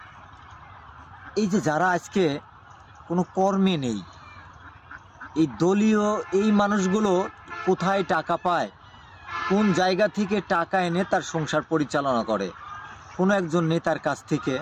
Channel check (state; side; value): identical; both; correlation 1.00